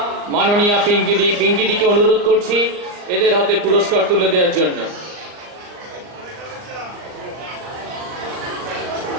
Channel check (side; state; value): left; late; 39 ms